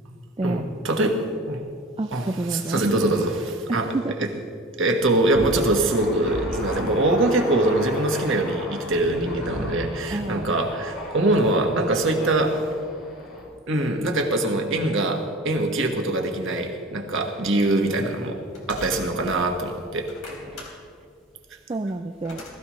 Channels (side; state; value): both; normal; correlation 0.38